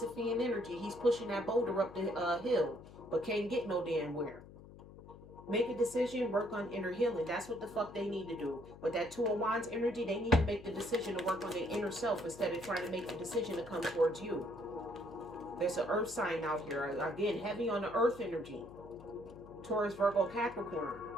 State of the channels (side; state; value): left; noise; hum, 18 dB below the sound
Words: energy. He's pushing that boulder up the hill, but can't get no damn where. Make a decision, work on inner healing. That's what the fuck they need to do. But that Two of Wands energy, they need to make the decision to work on their inner self instead of trying to make the decision to come towards you. There's an earth sign out here. Again, heavy on the earth energy. Taurus, Virgo, Capricorn.